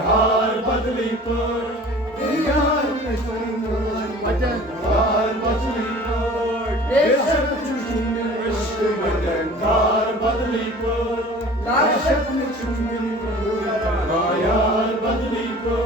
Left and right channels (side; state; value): both; normal; correlation 0.44